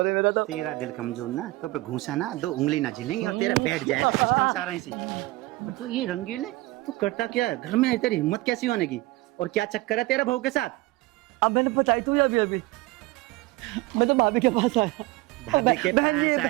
है मेरा। तो तेरा दिल कमजोर ना, तो पे घूसा ना 2 उंगली ना झिलेंगी और तेरा बैठ जाएगा सिस्टम सारा इसी। तो ये रंगीले तू करता क्या है घर में? तेरी हिम्मत कैसी होने की, और क्या चक्कर है तेरा बहू के साथ? अब मैंने बताई तू अभी अभी, मैं तो भाभी के पास आया। भाभी के पास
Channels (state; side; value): quieter; left; 20.3 dB